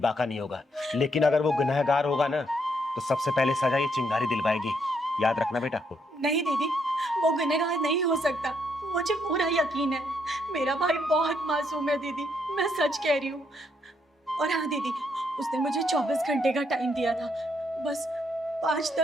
नहीं होगा, लेकिन अगर वो गुनहगार होगा ना तो सबसे पहले सजा ये चिंगारी दिलवाएगी, याद रखना बेटा। नहीं दीदी, वो गुनहगार नहीं हो सकता, मुझे पूरा यकीन है, मेरा भाई बहुत मासूम है दीदी, मैं सच कह रही हूँ। और हाँ दीदी, उसने मुझे 24 घंटे का टाइम दिया था, बस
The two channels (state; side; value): normal; both; correlation 0.74